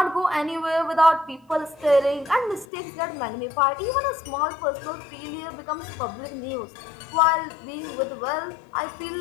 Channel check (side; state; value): right; drops out; at 2.7 s